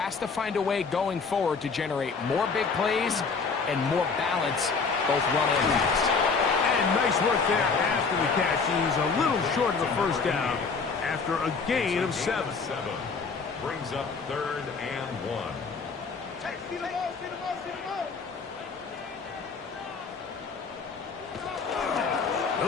to find a way going forward to generate more big plays and more balance, both run and pass. And nice work there after the catch. He's a little short of the first down after a gain of 7. Brings up 3rd and 1.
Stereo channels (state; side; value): quieter; right; 4.9 dB